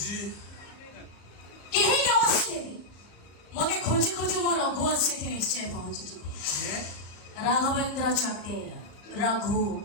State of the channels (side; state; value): right; late; 34 ms